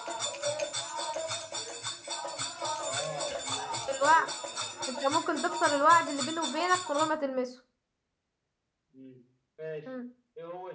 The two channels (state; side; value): identical; both; correlation 1.00